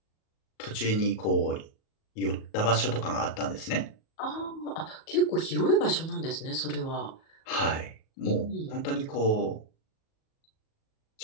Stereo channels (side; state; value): right; late; 37 ms